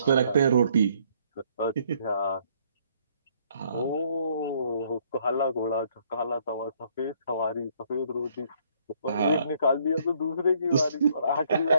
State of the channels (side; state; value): both; inverted; correlation -0.66